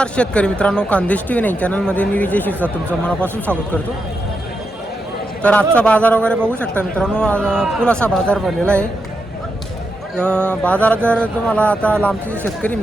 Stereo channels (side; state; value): both; normal; correlation 0.85